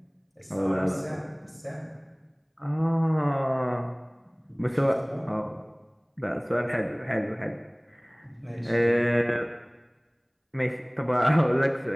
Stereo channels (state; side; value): identical; both; correlation 1.00